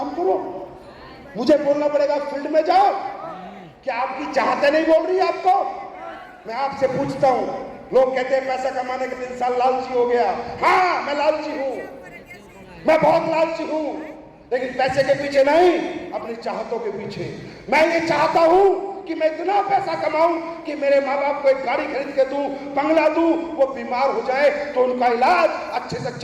करो, मुझे बोलना पड़ेगा फील्ड में जाओ, क्या आपकी चाहते नहीं बोल रही आपको? मैं आपसे पूछता हूं, लोग कहते हैं पैसा कमाने के 3 साल लालची हो गया। हाँ, मैं लालची हूं, मैं बहुत लालची हूं, लेकिन पैसे के पीछे नहीं, अपनी चाहतों के पीछे। मैं ये चाहता हूं कि मैं इतना पैसा कमाऊं कि मेरे माँ बाप को एक गाड़ी खरीद के दूं, बंगला दूं, वो बीमार हो जाए तो उनका इलाज अच्छे से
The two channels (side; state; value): both; identical; correlation 1.00